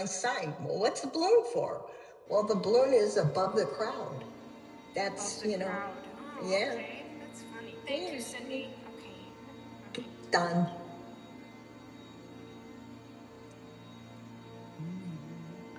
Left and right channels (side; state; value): both; identical; correlation 1.00